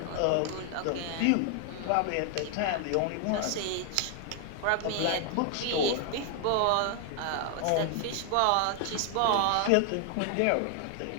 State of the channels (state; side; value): different; both; correlation 0.00